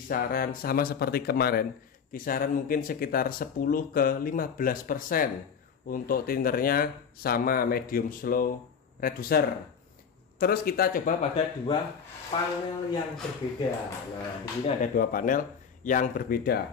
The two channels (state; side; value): quieter; right; 6.6 dB